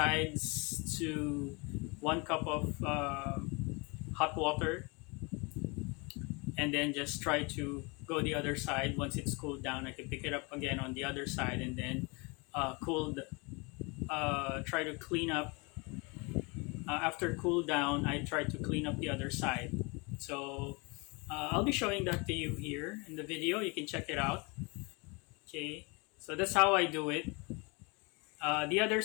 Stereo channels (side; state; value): right; quieter; 29.1 dB